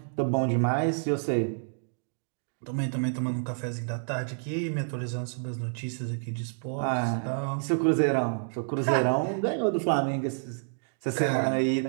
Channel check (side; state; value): left; silent; digital silence